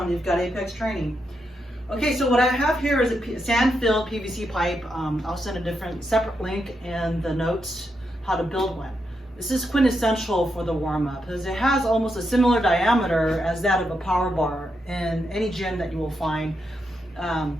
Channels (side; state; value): both; normal; correlation 0.83